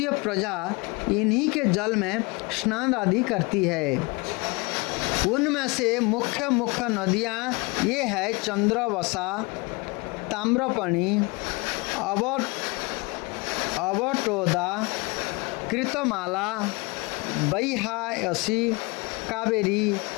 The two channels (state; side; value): quieter; right; 26.9 dB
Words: प्रजा इन्हीं के जल में स्नान आदि करती है। उनमें से मुख्य नदियाँ ये है चंद्रवसा, ताम्रपणि, अवटोदा, कृतमाला, बैहायसी, कावेरी,